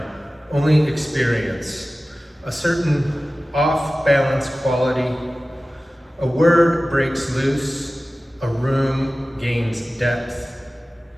only experience. A certain off-balance quality. A word breaks loose, a room gains depth.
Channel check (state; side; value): normal; both; correlation 0.96